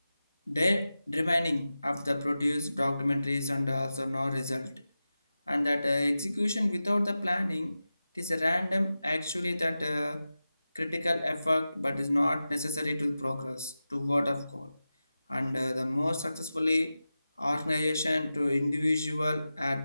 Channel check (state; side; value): inverted; both; correlation -0.94